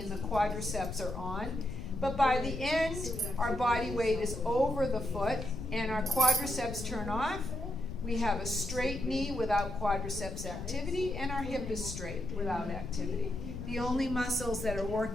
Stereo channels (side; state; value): left; noise; rumble, 8 dB below the sound